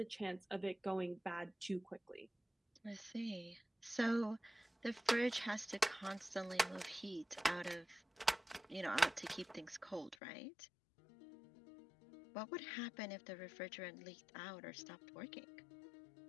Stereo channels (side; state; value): right; drops out; at 10.2 s